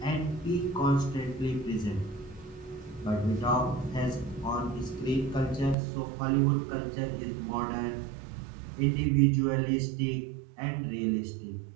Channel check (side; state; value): left; drops out; at 5.8 s